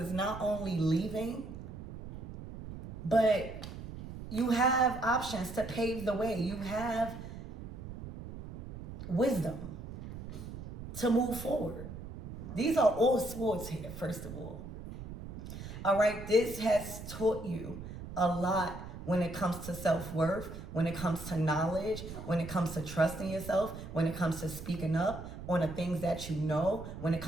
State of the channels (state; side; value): noise; right; rumble, 10 dB below the sound